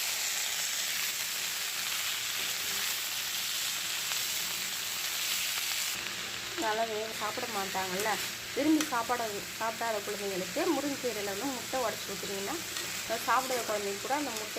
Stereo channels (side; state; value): both; identical; correlation 1.00